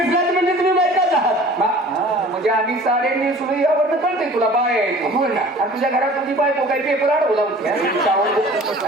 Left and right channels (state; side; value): normal; both; correlation 0.46